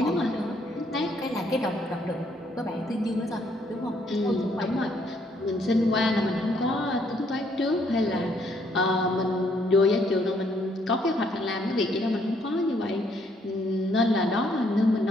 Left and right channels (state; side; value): normal; both; correlation 0.69